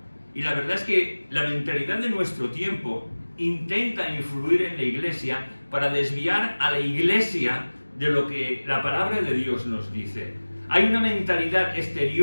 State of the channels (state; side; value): inverted; both; correlation -1.00